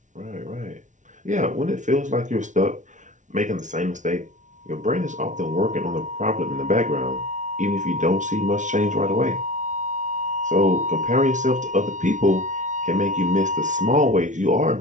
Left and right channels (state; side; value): late; left; 0.36 ms